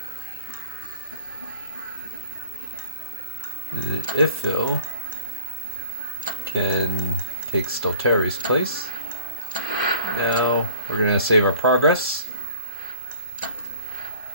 And then Ifil can take Stalteri's place. Now we're going to save our progress.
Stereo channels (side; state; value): both; inverted; correlation -0.50